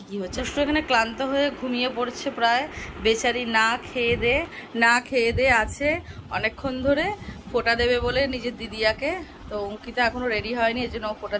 কী হচ্ছে। একটু এখানে ক্লান্ত হয়ে ঘুমিয়ে পড়ছে প্রায়, বেচারি না খেয়ে দে আছে অনেকক্ষণ ধরে, ফোঁটা দেবে বলে নিজের দিদিয়াকে। তো অঙ্কিতা এখনও রেডি হয়নি, এই জন্য ও ফোঁটা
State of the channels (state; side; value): identical; both; correlation 1.00